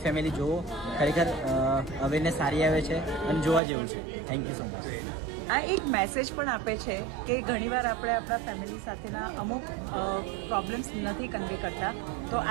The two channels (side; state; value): left; drops out; at 3.6 s